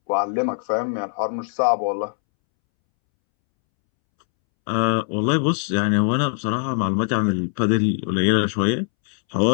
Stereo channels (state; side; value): silent; right; 64 dB below the other